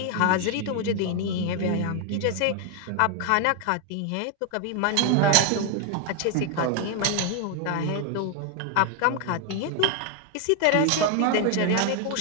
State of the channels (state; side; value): different; both; correlation 0.01